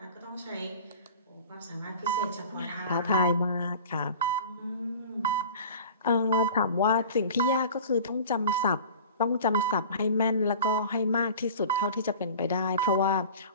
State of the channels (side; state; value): both; inverted; correlation -0.40